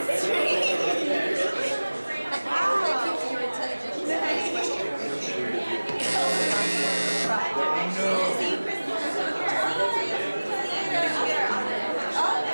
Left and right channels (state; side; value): inverted; both; correlation -1.00